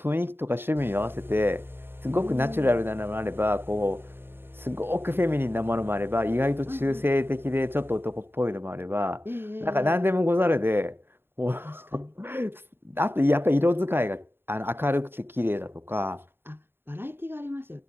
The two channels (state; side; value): late; left; 0.11 ms